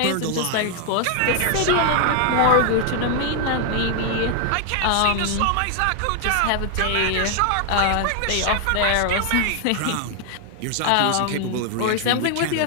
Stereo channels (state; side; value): different; both; correlation 0.00